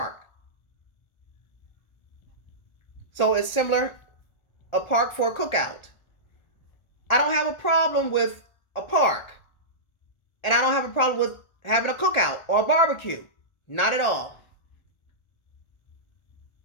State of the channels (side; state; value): right; late; 1.4 ms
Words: So it's similar, a park for a cookout. I don't have a problem with a park. And I don't have a problem with having a cookout or a barbecue. Not at all.